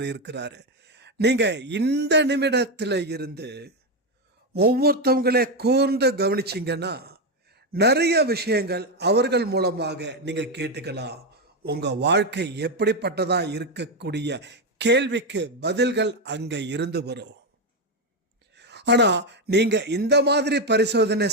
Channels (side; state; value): both; normal; correlation 0.08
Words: இருக்கிறாரு. நீங்க இந்த நிமிடத்தில் இருந்து ஒவ்வொருத்தவங்களே கூர்ந்து கவனிச்சிங்கன்னா நிறைய விஷயங்கள் அவர்கள் மூலமாக நீங்க கேட்டுக்கலாம். உங்க வாழ்க்கை எப்படிப்பட்டதா இருக்கக்கூடிய கேள்விக்கு பதில்கள் அங்க இருந்து வரும். ஆனா நீங்க இந்த மாதிரி பரிசோதனை